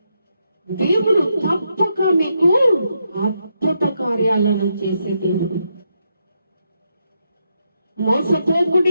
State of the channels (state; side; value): inverted; both; correlation -0.81